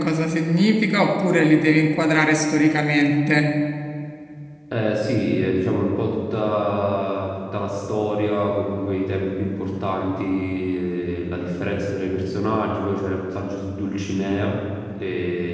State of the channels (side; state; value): both; identical; correlation 1.00